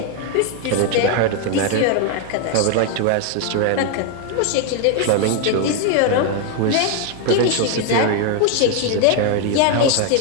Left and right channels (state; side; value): different; both; correlation 0.01